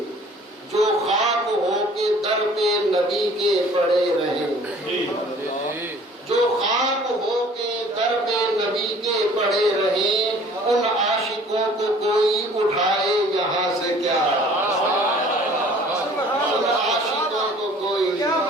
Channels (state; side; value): normal; both; correlation 0.52